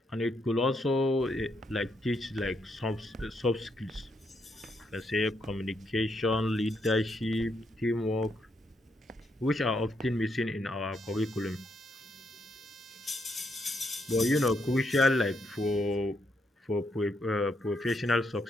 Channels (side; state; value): both; normal; correlation 0.77